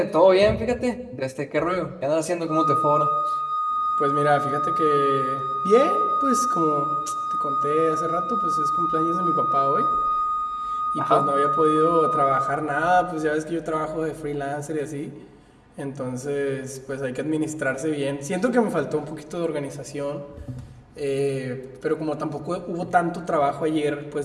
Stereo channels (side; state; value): both; identical; correlation 1.00